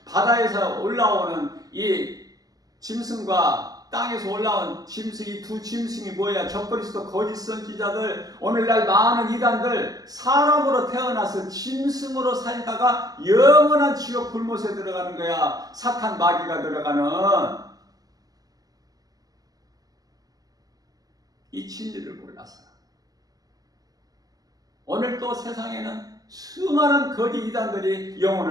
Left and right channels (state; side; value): late; left; 0.18 ms